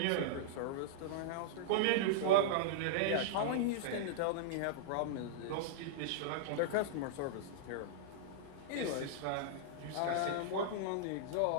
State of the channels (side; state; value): both; different; correlation -0.02